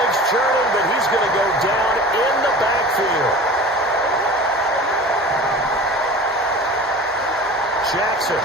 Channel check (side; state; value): both; normal; correlation 0.38